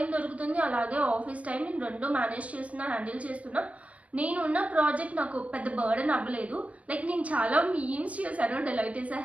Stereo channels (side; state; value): left; late; 0.066 ms